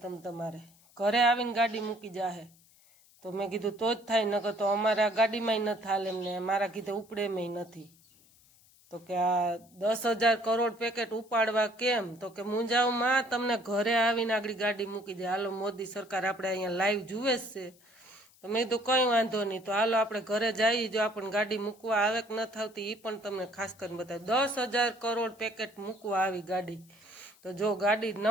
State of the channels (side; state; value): left; noise; hiss, 28 dB below the sound